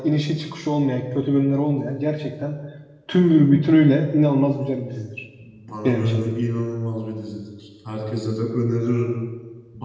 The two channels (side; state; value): both; identical; correlation 1.00